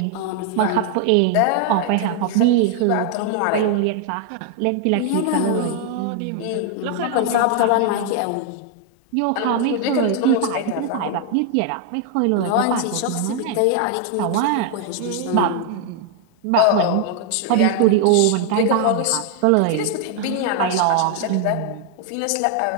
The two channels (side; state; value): both; different; correlation 0.00